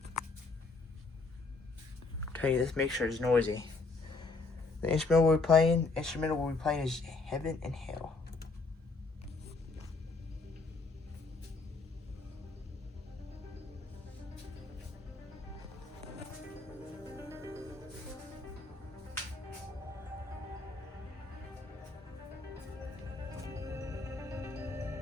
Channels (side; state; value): right; quieter; 3.7 dB